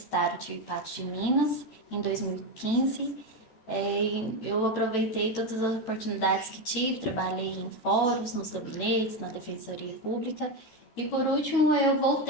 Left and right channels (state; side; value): late; right; 14 ms